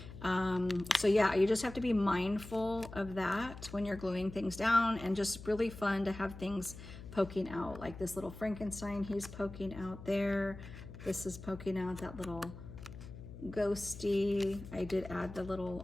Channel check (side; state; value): left; noise; hum, 13 dB below the sound